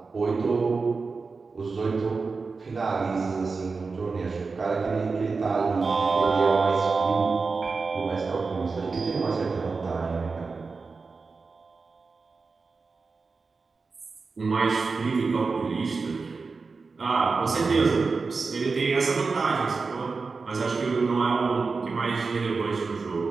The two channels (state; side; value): quieter; left; 4.4 dB